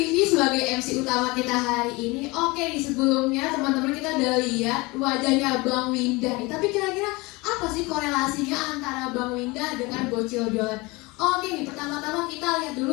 sebagai MC utama kita hari ini. Oke nih, sebelumnya teman-teman kita udah lihat wajahnya Bang Winda nih. Tapi kira-kira apa sih korelasinya antara Bang Winda dengan Bocil Jualan? Oke nih, pertama-tama kita lihat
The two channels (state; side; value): quieter; right; 24.0 dB